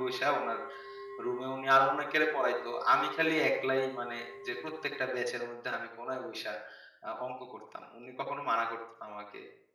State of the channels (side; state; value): both; identical; correlation 1.00